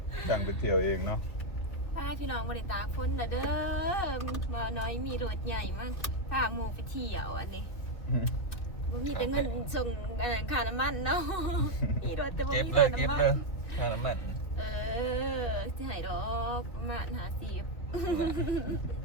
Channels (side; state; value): right; late; 2.8 ms